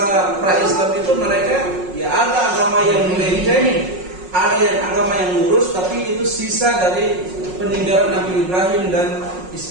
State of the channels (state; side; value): late; left; 5.5 ms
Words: pra-Islam itu mereka ya ada agama yang melenceng. Ada yang agama yang lurus, tapi itu sisa dari peninggalan Nabi Ibrahim dan